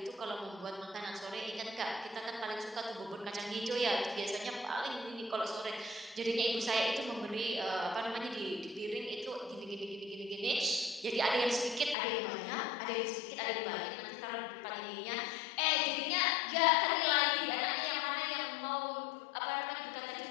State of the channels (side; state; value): right; drops out; at 12.0 s